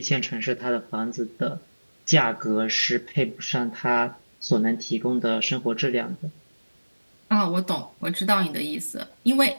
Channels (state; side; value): inverted; both; correlation -1.00